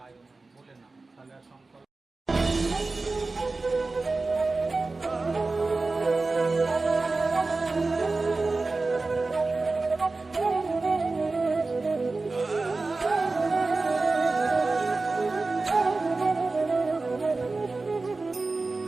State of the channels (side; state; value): left; quieter; 3.6 dB